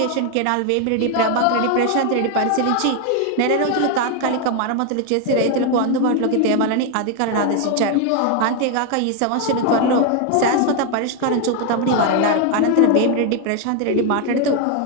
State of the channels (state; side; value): different; both; correlation 0.01